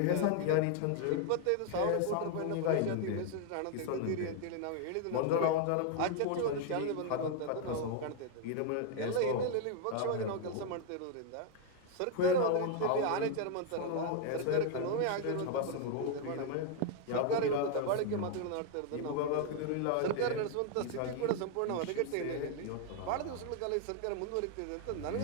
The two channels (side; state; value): both; different; correlation 0.00